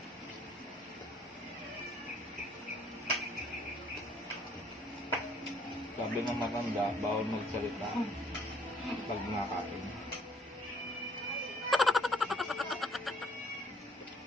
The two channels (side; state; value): both; normal; correlation 0.61